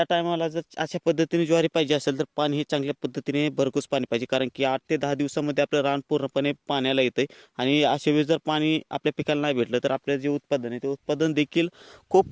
टायमाला जर अशा पद्धतीने ज्वारी पाहिजे असेल तर पाणी हे चांगल्या पद्धतीने भरघोस पाणी पाहिजे, कारण की 8 ते 10 दिवसामध्ये आपलं रान पूर्णपणे पाण्याला येतं आणि अशा वेळेस जर पाणी आपल्या पिकाला नाही भेटलं तर आपलं जे उत्पादन आहे ते उत्पादन देखील खूप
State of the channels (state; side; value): identical; both; correlation 1.00